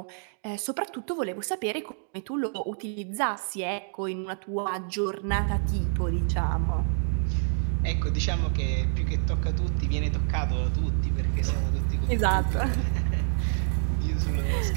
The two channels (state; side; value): silent; left; 60 dB below the other